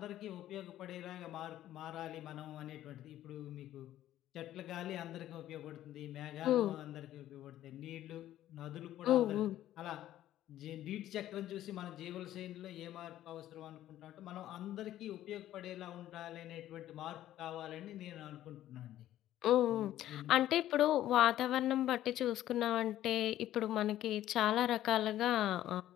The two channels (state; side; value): quieter; right; 13.0 dB